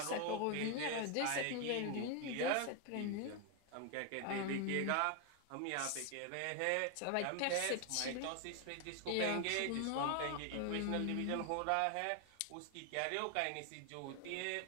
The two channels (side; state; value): both; different; correlation 0.01